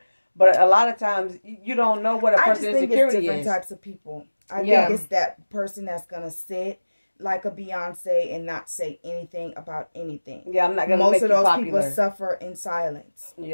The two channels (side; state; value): both; inverted; correlation -1.00